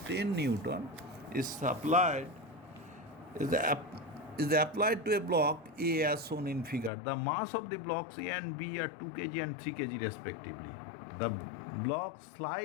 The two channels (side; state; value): right; drops out; at 6.9 s